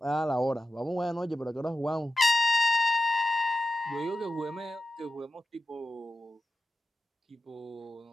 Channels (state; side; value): normal; both; correlation 0.92